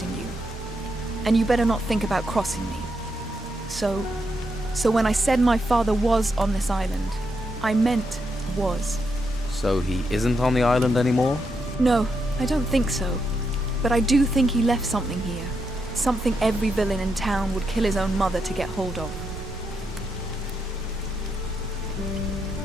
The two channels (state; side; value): normal; both; correlation 0.82